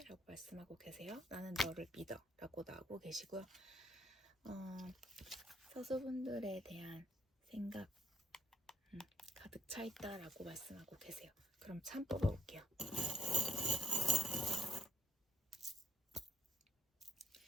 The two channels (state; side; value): normal; both; correlation 0.72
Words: 라고 말씀하고 계세요. 나는 너를 믿어 라고 나오고 계시고요. 사수분들에 대한 생각 가득 차 있다라고 말씀하고 계세요. 그럼 참 뽑아볼게요.